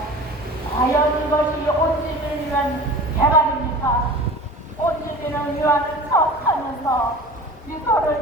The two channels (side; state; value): both; normal; correlation 0.39